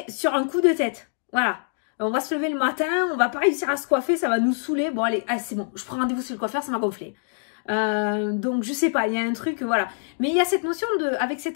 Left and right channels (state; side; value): silent; right; digital silence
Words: sur un coup de tête. Voilà. On va se lever le matin, on va pas réussir à se coiffer, ça va nous saouler. Bon, allez, ah, c'est bon. Je prends rendez-vous chez le coiffeur, ça m'a gonflé. Donc, je sais pas, il y a un truc, voilà. Mais il y a cette notion de, avec